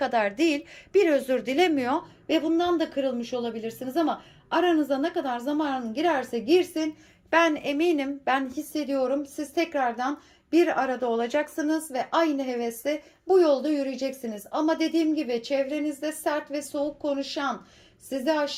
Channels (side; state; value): both; identical; correlation 1.00